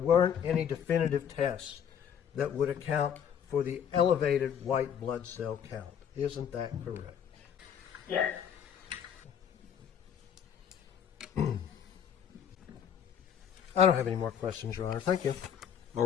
any definitive tests that would account for the elevated white blood cell count. Isn't that correct? Yes. I don't have any more questions, Your Honor. Thank you. All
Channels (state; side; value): quieter; right; 8.5 dB